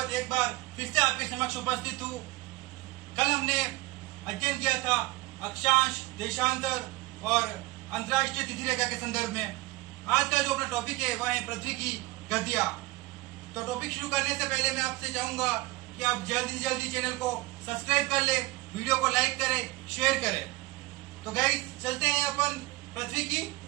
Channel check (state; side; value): quieter; left; 21.3 dB